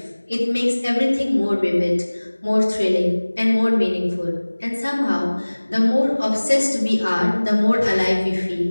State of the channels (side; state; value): both; inverted; correlation -1.00